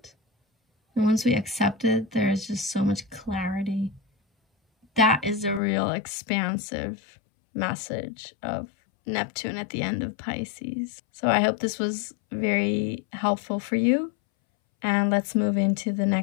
And once we accept it, there is just so much clarity. That is a real expansive message of Neptune at the end of Pisces. So I hope this was very helpful for you. And let's move into the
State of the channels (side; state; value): right; drops out; at 5.6 s